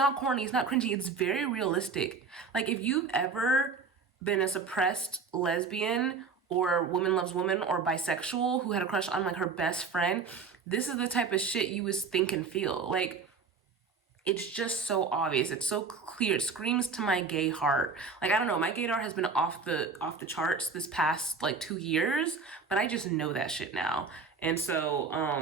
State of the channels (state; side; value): quieter; left; 4.9 dB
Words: corny, it's not cringy, it's very realistic. Like, if you've ever been a suppressed lesbian or woman loves woman or bisexual who had a crush on, like, her best friend, this is the type of shit you would think and feel. Like, it's just so obvious. It's so clear. It screams to my gay heart. Like, I don't know, my gaydar has been off the charts this past, like, 2 years, but I just know that shit now. And so,